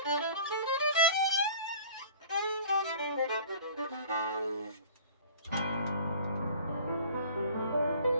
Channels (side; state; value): both; inverted; correlation -0.46